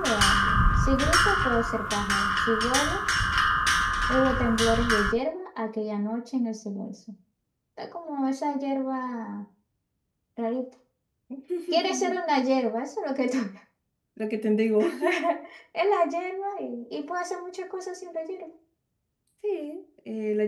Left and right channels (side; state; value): both; identical; correlation 1.00